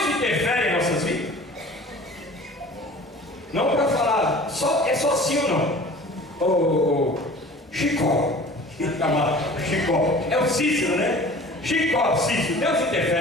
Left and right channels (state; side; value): normal; both; correlation 0.44